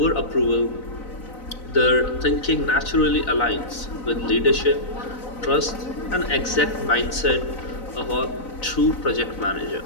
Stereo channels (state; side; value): late; right; 4.0 ms